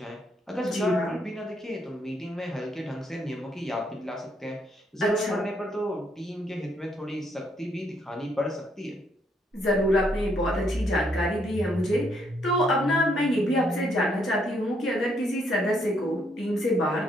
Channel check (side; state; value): both; normal; correlation 0.72